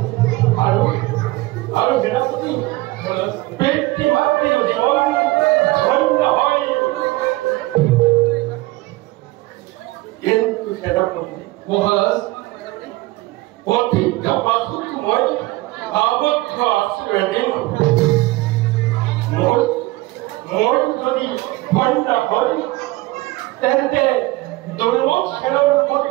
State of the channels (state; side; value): quieter; left; 19.9 dB